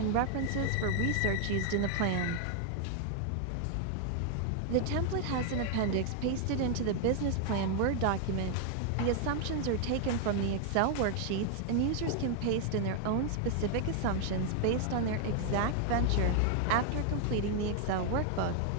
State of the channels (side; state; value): both; different; correlation 0.00